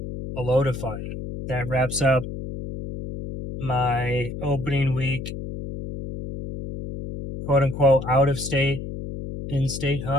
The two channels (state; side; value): noise; left; hum, 8 dB below the sound